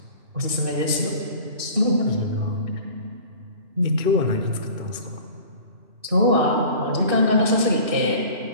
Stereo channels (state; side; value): late; left; 2.6 ms